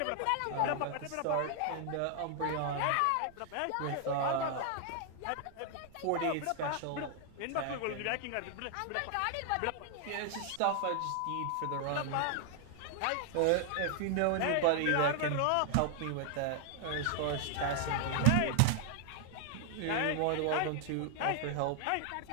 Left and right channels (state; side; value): different; both; correlation 0.00